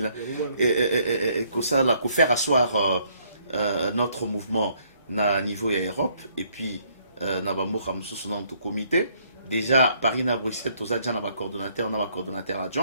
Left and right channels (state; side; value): inverted; both; correlation -0.67